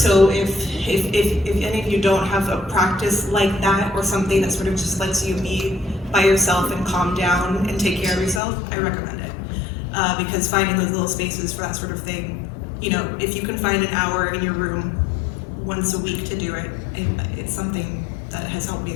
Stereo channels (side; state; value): right; drops out; at 8.4 s